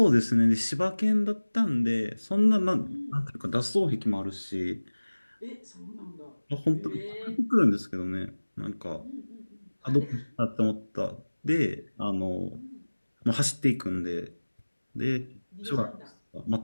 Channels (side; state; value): both; inverted; correlation -1.00